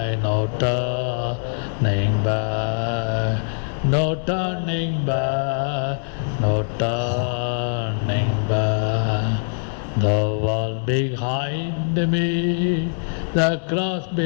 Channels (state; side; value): silent; right; digital silence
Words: no turning back, no turning back, no turning back. The world behind me, the cross